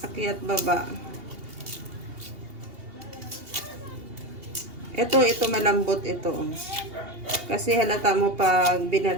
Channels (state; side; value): late; left; 2.8 ms